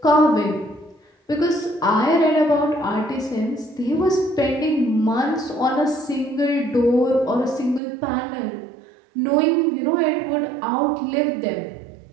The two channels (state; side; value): drops out; left; at 7.8 s